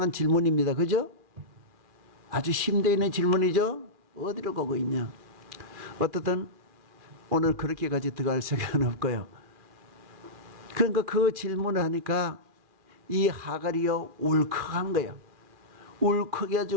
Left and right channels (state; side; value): late; left; 2.4 ms